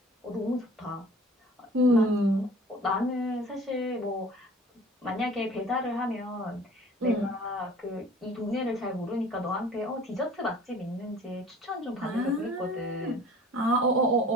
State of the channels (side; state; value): both; normal; correlation 0.47